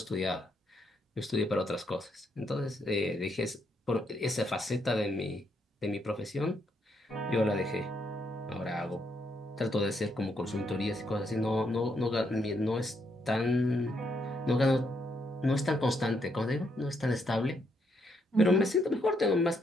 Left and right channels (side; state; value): both; normal; correlation 0.76